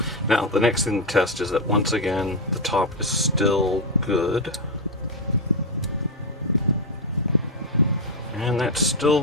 Now, the next thing to test is that once again, the top is still good. And that's still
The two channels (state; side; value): normal; both; correlation 0.05